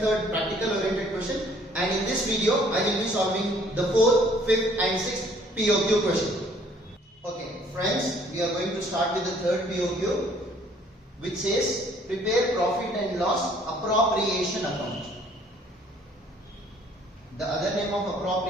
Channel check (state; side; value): normal; both; correlation 0.59